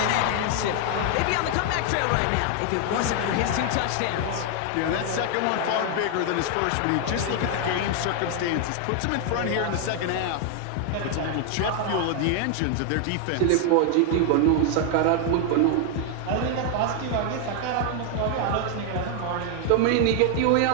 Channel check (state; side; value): different; both; correlation 0.00